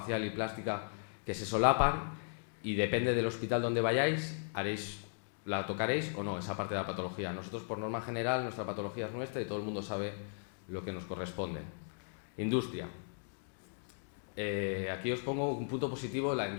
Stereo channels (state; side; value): silent; right; digital silence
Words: y plástica que se solapan y depende del hospital donde vayáis, la tocaréis o no, esa parte de la patología. Nosotros por norma general, nuestra patología es nuestra y todo el mundo sabe lo que nos corresponde. Industria. Aquí os pongo un punto positivo en la